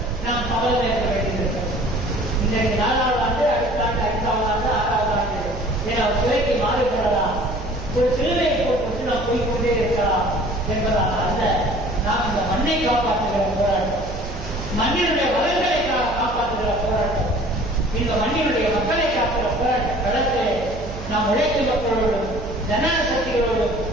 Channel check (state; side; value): noise; right; hum, 11 dB below the sound